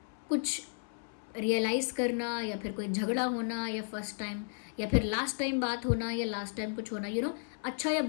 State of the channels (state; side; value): silent; right; 55 dB below the other